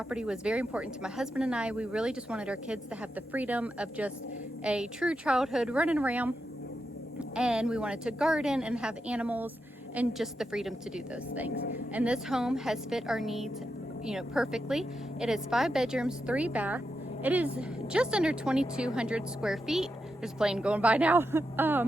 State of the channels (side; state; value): both; normal; correlation 0.87